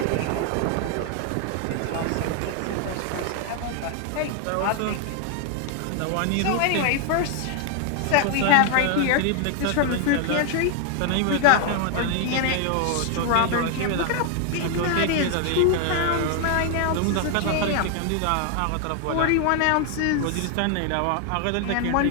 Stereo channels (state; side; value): different; both; correlation 0.00